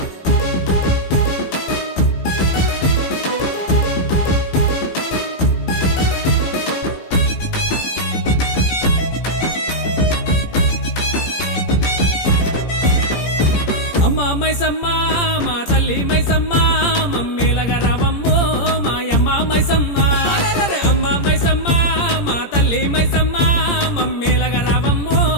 అమ్మ మైసమ్మ మా తల్లి మైసమ్మ మమ్మేలగా రావమ్మో మాయమ్మ మైసమ్మ అమ్మ మైసమ్మ మా తల్లి మైసమ్మ మమ్మేలగా రావమ్మో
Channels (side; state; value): right; late; 17 ms